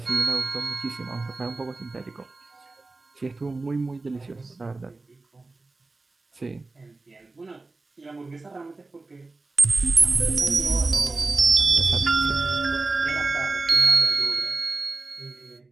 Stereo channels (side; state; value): left; quieter; 3.5 dB